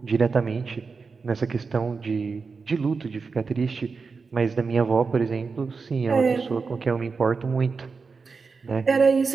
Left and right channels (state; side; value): quieter; left; 4.8 dB